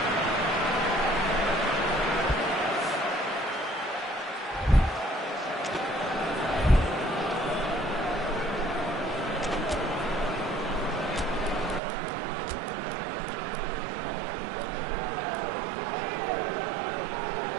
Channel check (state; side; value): drops out; left; at 11.8 s